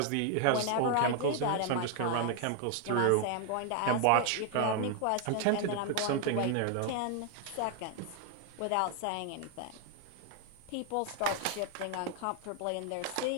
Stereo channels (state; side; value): different; both; correlation 0.00